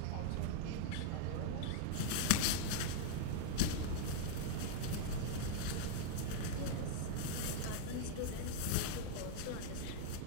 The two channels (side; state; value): both; different; correlation -0.01